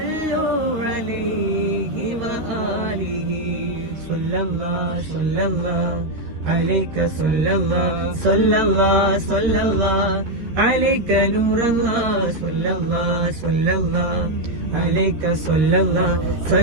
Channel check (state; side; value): late; left; 13 ms